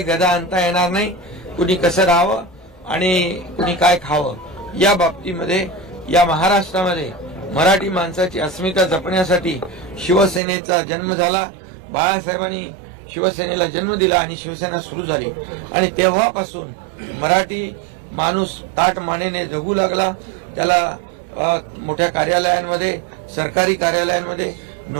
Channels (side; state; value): left; drops out; at 10.4 s